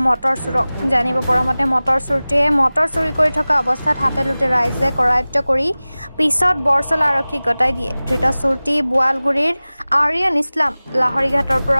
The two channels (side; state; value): both; inverted; correlation -0.98